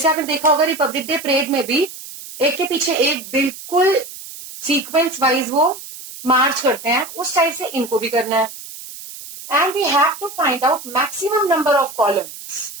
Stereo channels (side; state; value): right; noise; hiss, 14 dB below the sound